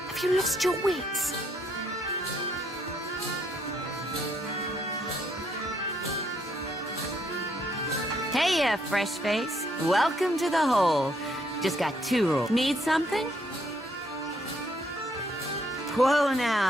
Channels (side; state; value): both; normal; correlation 0.71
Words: Have you lost your wits? Hey, fresh face. Welcome to the hole. Just got 2 rules. Need something? Whoa